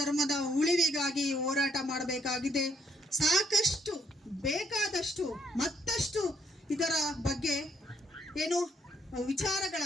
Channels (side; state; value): both; normal; correlation 0.69